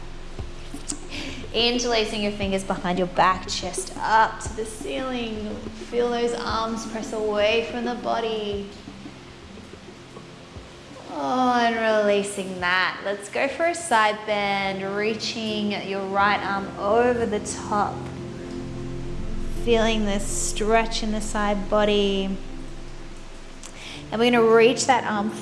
Interlacing your fingers behind your back, chest up to the ceiling. Feel those arms press away from the body. Oh, and releasing that. Let's go for a side bend, reaching your right arm over the top. feeling this stretch in the side body. And we're going to reach that arm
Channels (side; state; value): both; identical; correlation 1.00